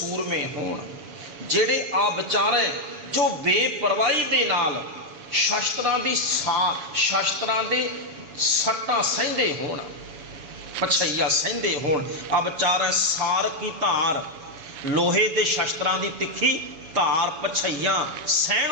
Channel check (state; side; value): late; left; 7.1 ms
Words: होण, जेड़े आ विचारै जो बेपरवाही दे नाल शास्त्रां दी शास्त्रां दे सट्टां सहंदे होण, पछैया सहंदे होण। आ विचारै सार की धार, लोहे दे शास्त्रां दी तिखी धार पछैया